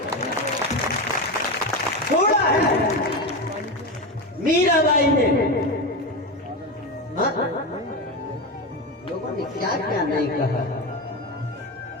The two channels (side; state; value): both; normal; correlation 0.18